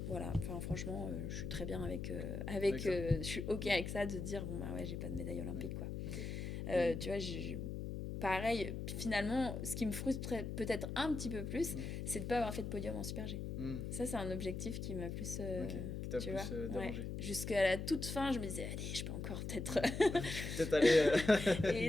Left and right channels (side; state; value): left; noise; hum, 5 dB below the sound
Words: voilà. Enfin, franchement, je suis très bien avec je suis OK avec ça, de dire, bon, bah, ouais, j'ai pas de médaille olympique, quoi. Okay. Tu vois, pareil, finalement, ce qui me frustrait peut-être un petit peu plus, c'est de ne pas avoir fait de podium en Super G. Ça, c'est un objectif qui m'a plus, qui t'a tu plus vois, dérangé. Ouais. Jusqu'à la toute fin, je me disais, allez, je peux encore peut-être... peut-être aller Et